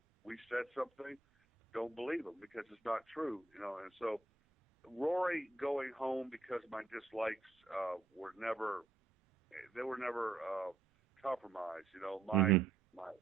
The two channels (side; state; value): left; quieter; 3.7 dB